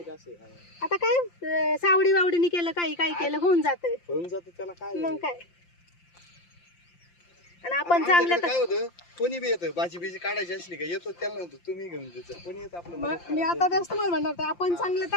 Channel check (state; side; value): late; right; 5.8 ms